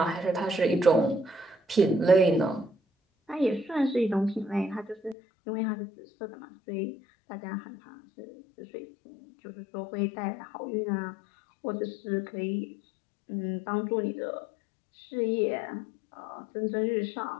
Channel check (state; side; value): drops out; right; at 5.2 s